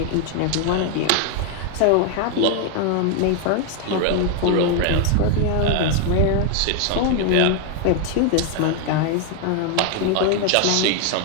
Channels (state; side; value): different; both; correlation 0.01